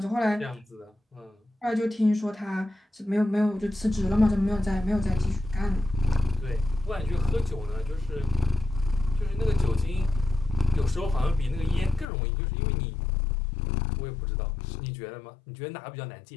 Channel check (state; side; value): drops out; right; at 12.1 s